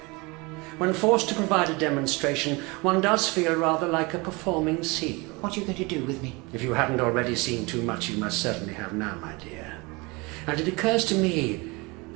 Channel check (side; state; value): left; quieter; 26.1 dB